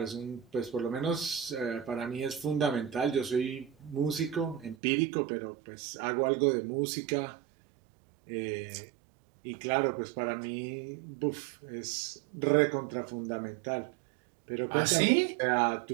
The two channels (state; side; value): drops out; left; at 4.8 s